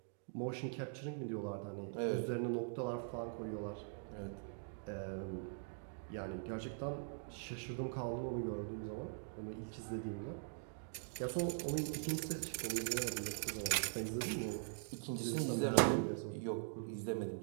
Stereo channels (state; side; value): silent; left; digital silence